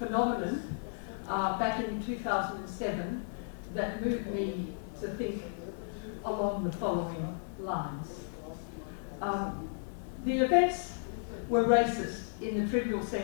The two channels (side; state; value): right; silent; digital silence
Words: back in 2007 that moved me to think along the following lines. The events were racist in the trivial